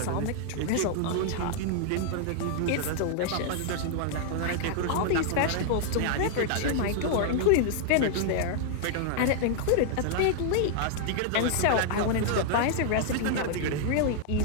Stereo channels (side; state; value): both; different; correlation 0.00